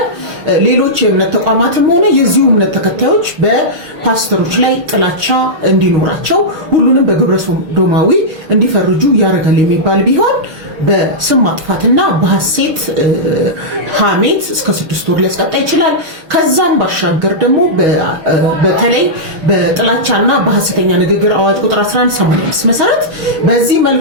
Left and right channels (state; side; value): late; left; 6.4 ms